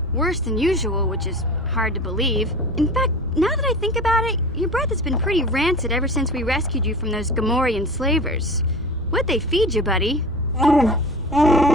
Worse than usual, which is hard to believe. In fact, now that I think about it, your breath has been pretty rancid ever since we rescued you from those Gamorrean slavers. What'd they feed you, buddy? Oh,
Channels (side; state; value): both; normal; correlation 0.35